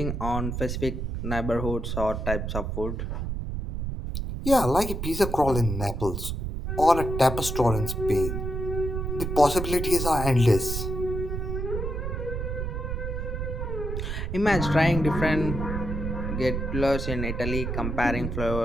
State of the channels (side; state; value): right; noise; rumble, 3 dB below the sound